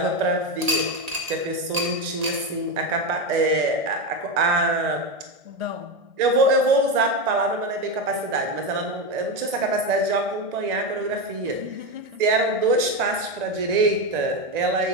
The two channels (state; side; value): late; left; 1.8 ms